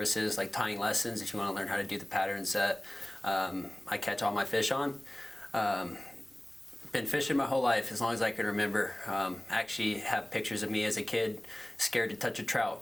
like tying lessons, if you want to learn how to do the patterns that I catch all my fish on. Been fishing my whole life, as long as I can remember. Actually have pictures of me as a kid, scared to touch a trout,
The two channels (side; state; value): right; noise; rumble, 28 dB below the sound